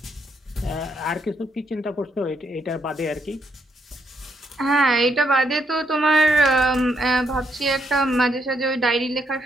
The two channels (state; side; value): normal; both; correlation 0.75